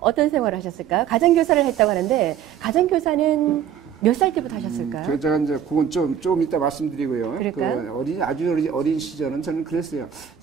생활을 하셨을까요? 가정교사를 했다고 하는데, 가정교사는 몇 살 때부터 하셨을까요? 제가 이제 그건 좀 이따 말씀드리고요. 그럴까요? 아주 어린 시절은 저는 그랬어요.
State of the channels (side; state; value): left; quieter; 9.1 dB